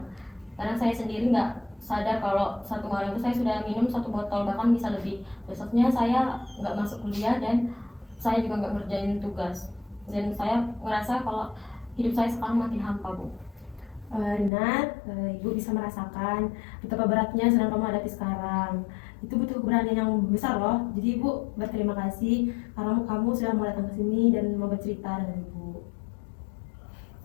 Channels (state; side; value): drops out; right; at 14.5 s